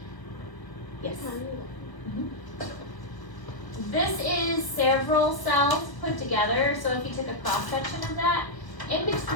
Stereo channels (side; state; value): right; late; 1.0 ms